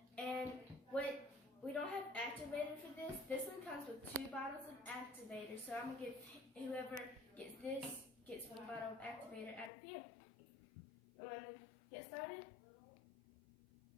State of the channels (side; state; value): right; drops out; at 9.7 s